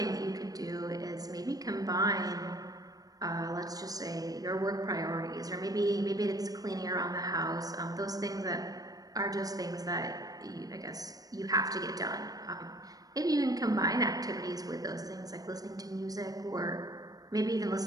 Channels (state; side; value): late; left; 0.18 ms